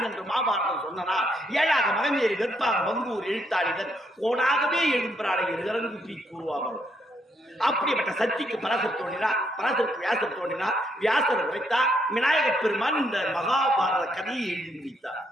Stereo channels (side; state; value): both; normal; correlation 0.74